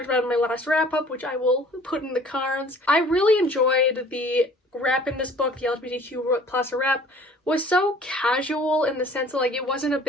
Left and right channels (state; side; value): normal; both; correlation 0.51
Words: about it in my last wrap-up, which I will put in the cards. I really enjoyed the rep in this book. The LGBTQ plus rep was so casual in the sense that, like, it wasn't a